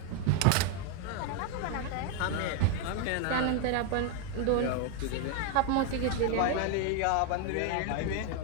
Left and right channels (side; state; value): both; different; correlation 0.01